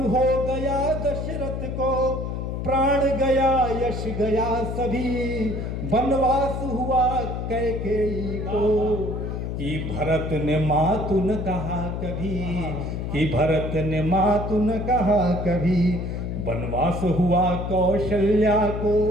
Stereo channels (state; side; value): noise; left; hum, 4 dB below the sound